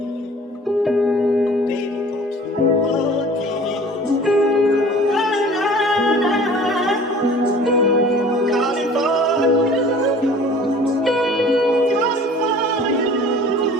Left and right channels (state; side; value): normal; both; correlation 0.46